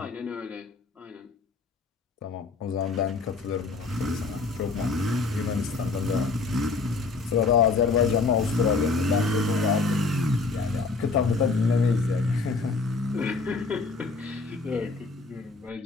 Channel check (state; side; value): quieter; right; 4.0 dB